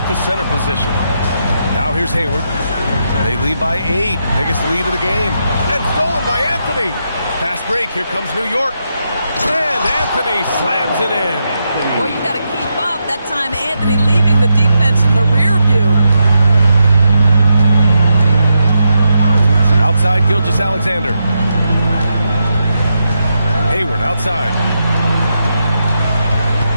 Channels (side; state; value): both; inverted; correlation -0.84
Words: the center position. Now here's Hayward. They lead by 8, biggest lead of the game. And stolen by Anthony. Fast break, here comes New York. And Anthony slams it in. Boy, you got to keep up. That time Anthony leaving the defense in the rear view. Outside, Gilgeous-Alexander. Hayward outside.